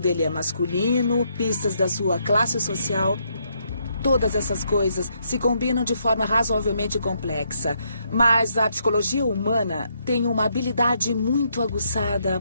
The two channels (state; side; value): inverted; both; correlation -0.75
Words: é masculino, pistas da sua classe social. Todas essas coisas se combinam de forma razoavelmente complexa, mas a psicologia humana tem uma habilidade muito aguçada